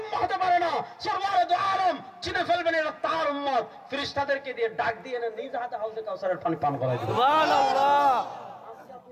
উম্মাহ হতে পারে না। সরওয়ারে দু আলম চিনে ফেলবেন এটা তার উম্মত। ফেরেশতাদেরকে দিয়ে ডাক দিয়ে এনে নিজ হাতে হাউজে কাউসারের পানি পান করাই দিবেন। সুবহানাল্লাহ।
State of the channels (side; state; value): both; identical; correlation 1.00